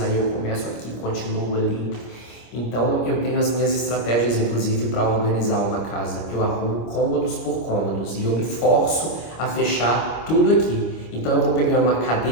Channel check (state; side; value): late; right; 25 ms